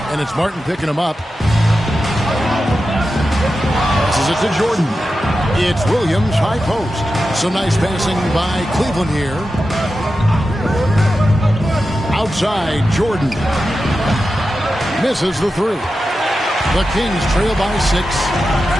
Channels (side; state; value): both; normal; correlation 0.91